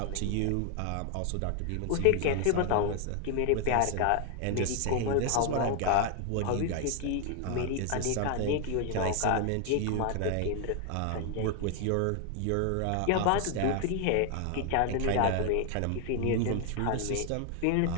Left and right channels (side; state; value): both; different; correlation 0.00